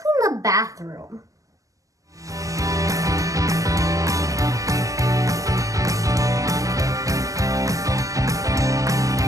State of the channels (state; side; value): late; left; 0.16 ms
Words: clean the bathroom?